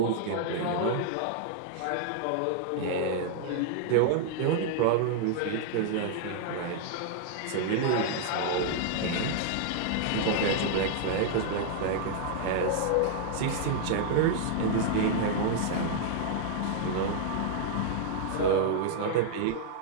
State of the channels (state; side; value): different; both; correlation -0.01